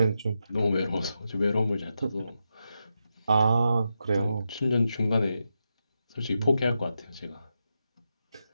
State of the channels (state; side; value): inverted; both; correlation -0.87